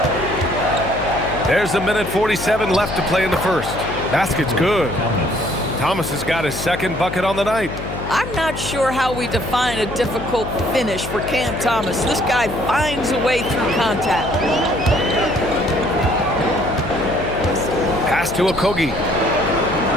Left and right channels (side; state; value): left; noise; hum, 8 dB below the sound